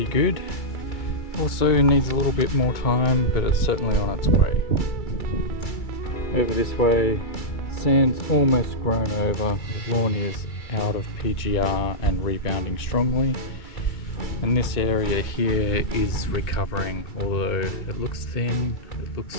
good. Also needs a little bit more time, but it's certainly on its way. Over this way, sand's almost grown over, the lawn is out of PGR and rebounding strongly. And this area here is recovering, although it looks thin, it looks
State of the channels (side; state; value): right; late; 2.3 ms